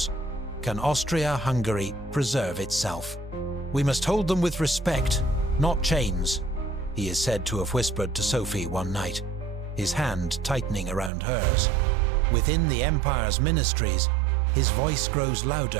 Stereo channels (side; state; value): left; drops out; at 11.1 s